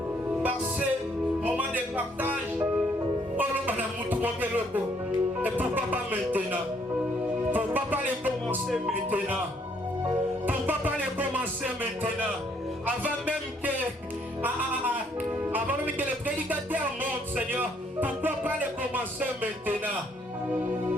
par ces moments de partage, et pourquoi pas maintenant? Pourquoi pas les commencer maintenant? Pourquoi pas les commencer maintenant? Avant même que les prédicateurs montent, Seigneur, pourquoi pas les commencer maintenant?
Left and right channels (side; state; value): both; normal; correlation 0.68